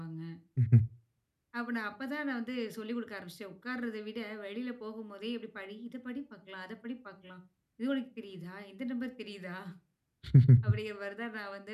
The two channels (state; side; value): identical; both; correlation 1.00